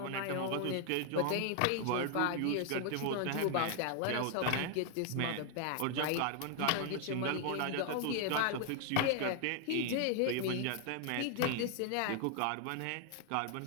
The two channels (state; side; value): different; both; correlation 0.00